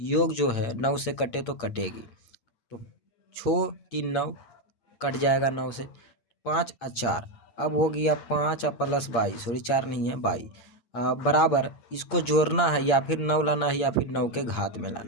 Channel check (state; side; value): late; right; 8.6 ms